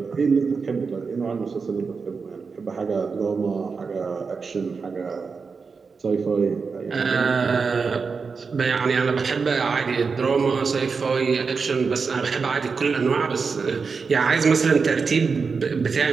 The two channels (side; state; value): left; quieter; 5.1 dB